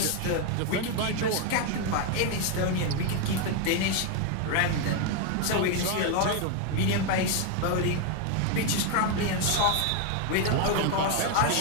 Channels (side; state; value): both; different; correlation 0.01